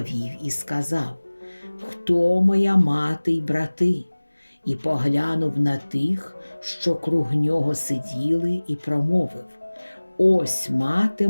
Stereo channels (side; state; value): both; inverted; correlation -1.00